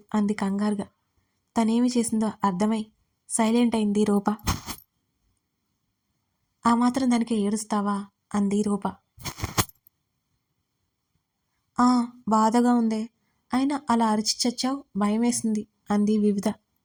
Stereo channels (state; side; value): identical; both; correlation 1.00